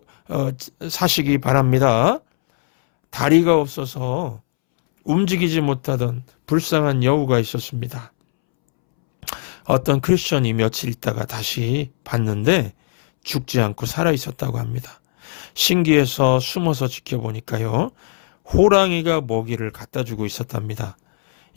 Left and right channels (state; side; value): silent; right; 66 dB below the other